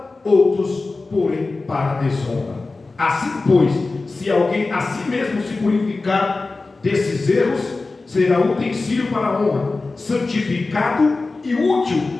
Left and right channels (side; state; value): right; quieter; 3.6 dB